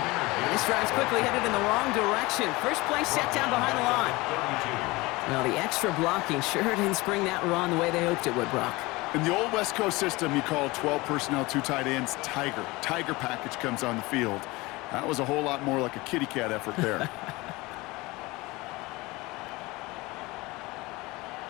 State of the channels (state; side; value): quieter; right; 22.2 dB